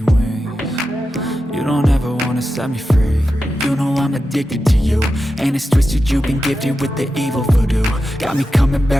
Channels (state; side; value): normal; both; correlation 0.90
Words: wings. You don't ever wanna set me free. You know I'm addicted to you, and it's twisted, you've been gifted with the evil voodoo. Got me coming